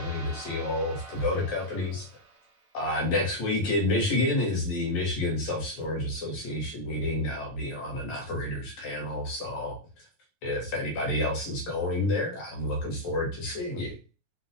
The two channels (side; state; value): right; late; 9.2 ms